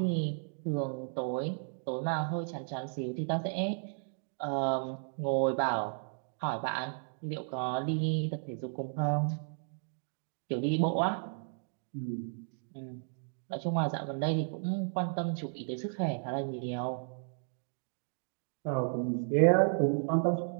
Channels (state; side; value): silent; left; digital silence